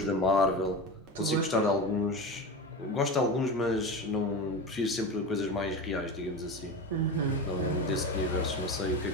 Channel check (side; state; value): both; normal; correlation 0.25